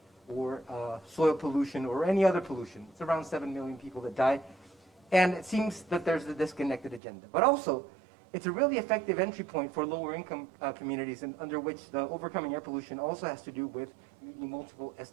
or soil pollution or any other pollution. It's around 7 million people that die. And it seems that there's a disconnected agenda. But also, it's a really effective entry point for lower income communities, and under which the overcoming air pollution also has to do with meeting multiple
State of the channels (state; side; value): drops out; left; at 7.0 s